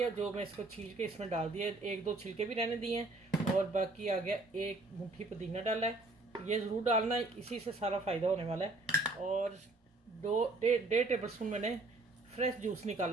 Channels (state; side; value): quieter; left; 3.0 dB